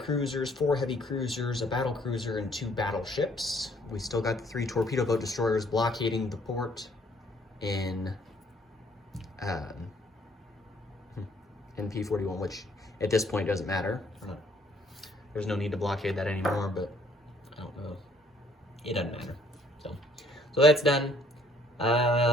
4 heavy cruisers, a battle cruiser, and 2 battleships. We still got the 3 torpedo boat destroyers blockading the port in P41, which at this point doesn't matter. There's no need to blockade that anymore, but I don't know. It doesn't matter. So that's done.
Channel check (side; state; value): both; normal; correlation 0.62